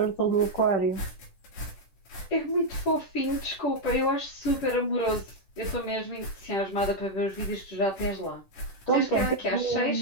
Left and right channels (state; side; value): late; right; 10 ms